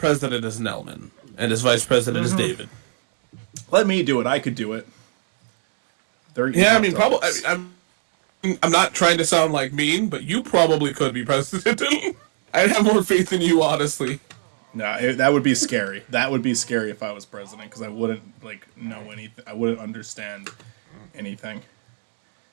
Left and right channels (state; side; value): silent; left; digital silence